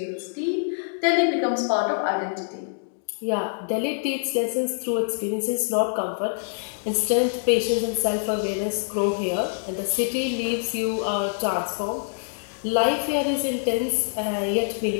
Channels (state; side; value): silent; right; digital silence